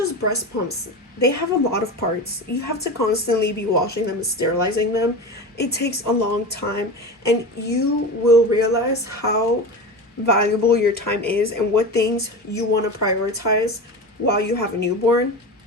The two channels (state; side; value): normal; both; correlation 0.27